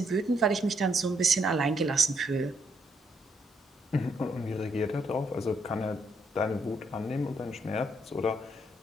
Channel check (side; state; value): both; normal; correlation 0.74